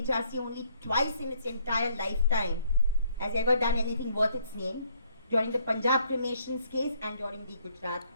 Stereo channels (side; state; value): both; inverted; correlation -0.67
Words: only twice in its entire lifetime has ever done anything worth its name, during the Punjab cremations case and during the Gujarat